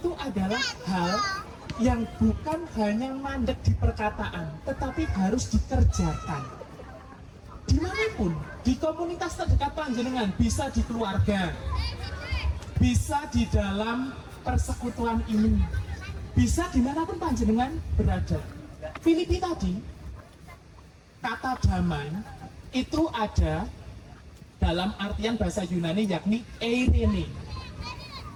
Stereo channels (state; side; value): identical; both; correlation 1.00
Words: adalah hal yang bukan hanya mandek di perkataan, tetapi harus dikerjakan. Dimanapun, di komunitas terdekat panjenengan, bisa di keluarga, bisa di dalam persekutuan ini, bisa dimanapun panjenengan berada. Filipi tadi, kata damai itu ada dalam artian bahasa Yunani yakni eirene.